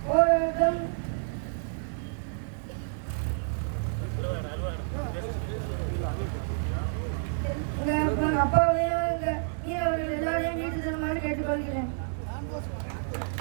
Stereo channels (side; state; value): left; silent; digital silence